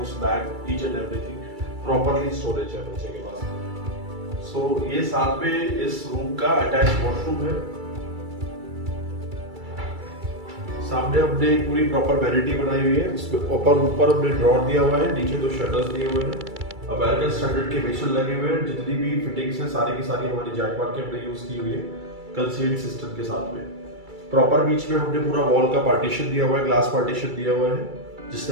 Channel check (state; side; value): late; left; 2.3 ms